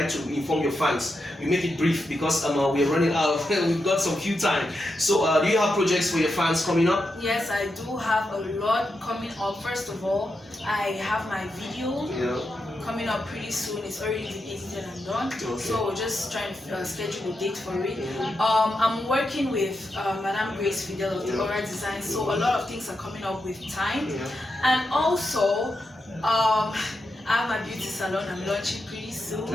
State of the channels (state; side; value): normal; both; correlation 0.86